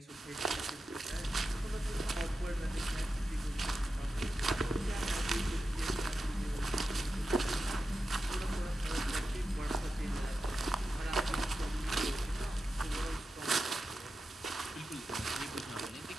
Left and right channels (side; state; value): both; normal; correlation 0.91